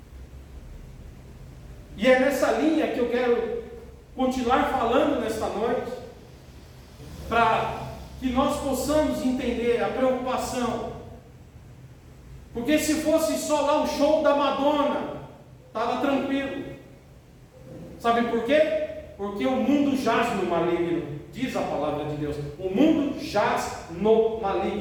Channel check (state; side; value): identical; both; correlation 1.00